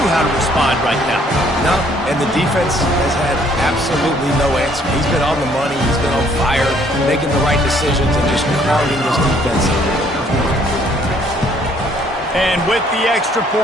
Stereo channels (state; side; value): normal; both; correlation 0.63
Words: how to respond right now. No, and the defense has had absolutely no answer. He's been on the money. He's been on fire, making the right decisions, and just crowding this defense. And with the extra